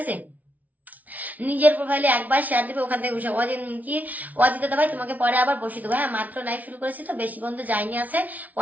আছে? নিজের প্রোফাইলে একবার শেয়ার দিবে, ওখান থেকে বসে কি অজিত দাদা ভাই তোমাকে পরে আবার বসিয়ে দেবো, হ্যাঁ? মাত্র লাইভ শুরু করেছি তো, বেশি বন্ধু যায়নি, আছে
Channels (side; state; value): left; late; 0.075 ms